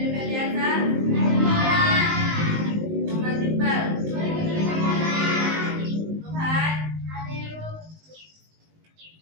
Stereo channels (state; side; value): late; left; 19 ms